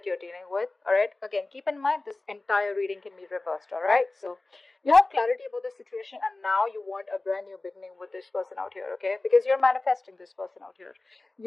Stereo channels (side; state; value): right; quieter; 3.1 dB